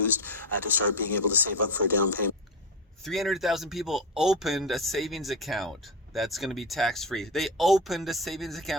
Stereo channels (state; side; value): normal; both; correlation 0.18